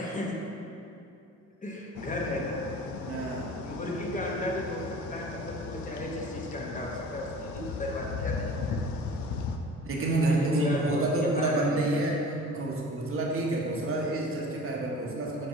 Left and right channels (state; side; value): normal; both; correlation 0.41